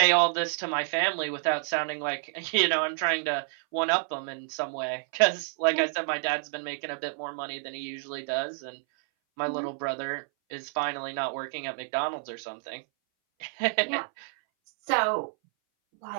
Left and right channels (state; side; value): silent; left; 59 dB below the other